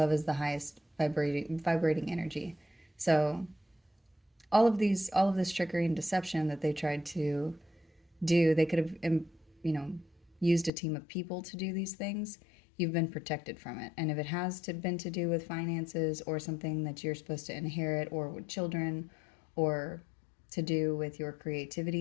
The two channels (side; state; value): right; drops out; at 10.7 s